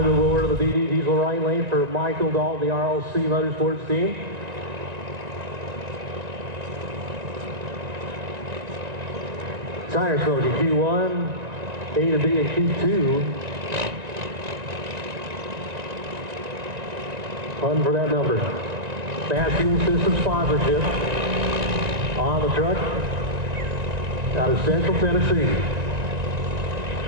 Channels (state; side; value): late; left; 1.9 ms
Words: move over to the BD Diesel right lane for Michael Dalton, the RLC Motorsports team. Tire smoking Q1, A to B and Q2. Fun for that number. Fast Fuel System sponsorship on the truck out of Central Tennessee.